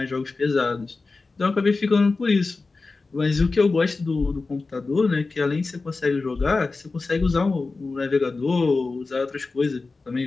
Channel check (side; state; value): right; quieter; 3.8 dB